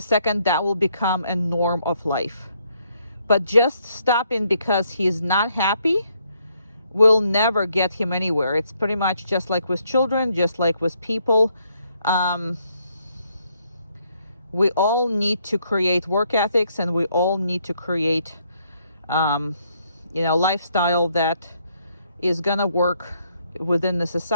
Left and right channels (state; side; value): inverted; both; correlation -0.72